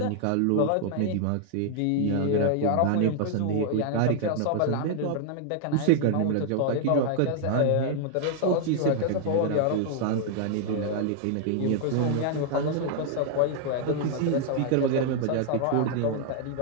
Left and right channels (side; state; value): both; different; correlation 0.00